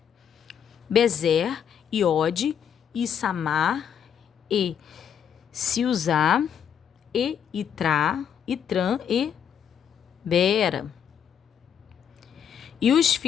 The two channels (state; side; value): quieter; right; 8.4 dB